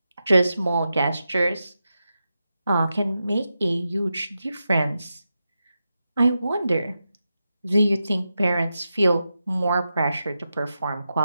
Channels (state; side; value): inverted; both; correlation -0.89